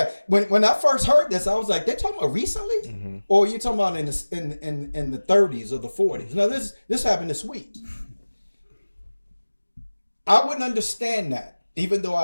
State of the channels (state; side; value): inverted; both; correlation -1.00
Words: when I first heard this, I was like, they're talking about recently? Or you talking about in the 30s or the 40s? No, this happened this week. I wouldn't understand that, even though